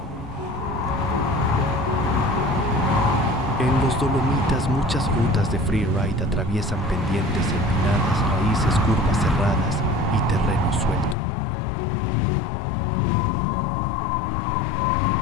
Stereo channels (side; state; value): right; drops out; at 11.2 s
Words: En los Dolomitas muchas rutas de freeride atraviesan pendientes empinadas, raíces, curvas cerradas y terreno suelto.